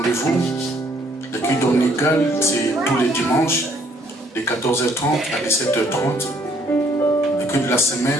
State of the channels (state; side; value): normal; both; correlation 0.65